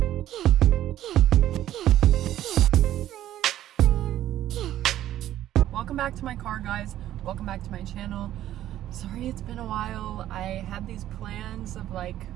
Welcome back to my car, guys. Welcome back to my channel. Sorry it's been a while. I had these plans of like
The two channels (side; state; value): left; quieter; 12.7 dB